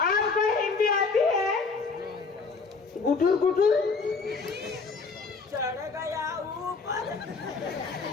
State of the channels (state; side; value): quieter; right; 4.6 dB